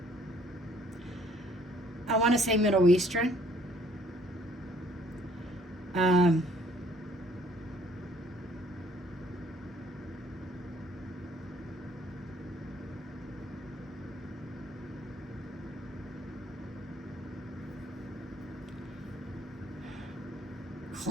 I want to say Middle Eastern.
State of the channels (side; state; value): both; normal; correlation 0.61